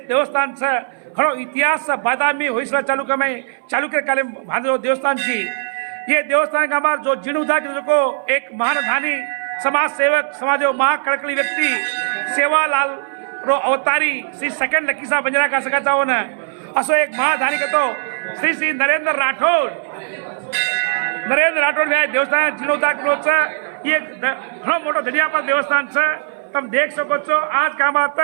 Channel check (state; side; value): silent; left; 61 dB below the other